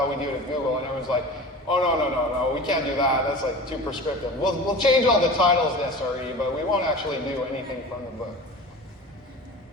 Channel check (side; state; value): both; normal; correlation 0.35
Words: we do it at Google. And everyone's like, oh, no, we can't do that. That's like too prescriptive. We'll change all the titles to SRE, but we won't actually do anything from the book.